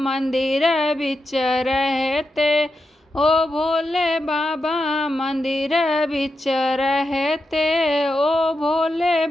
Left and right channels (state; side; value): normal; both; correlation 0.87